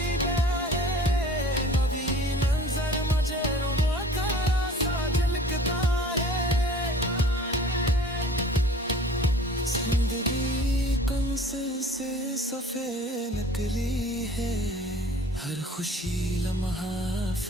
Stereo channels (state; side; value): normal; both; correlation 0.47